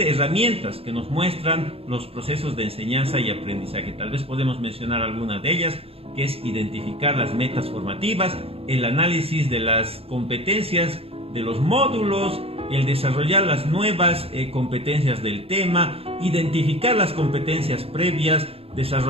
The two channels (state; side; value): late; left; 0.28 ms